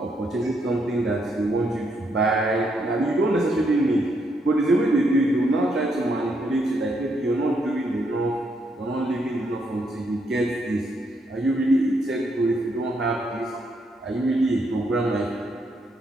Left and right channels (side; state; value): both; normal; correlation 0.76